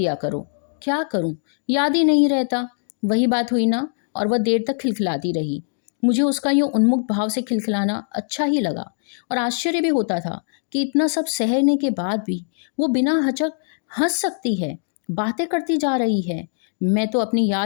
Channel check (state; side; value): silent; right; digital silence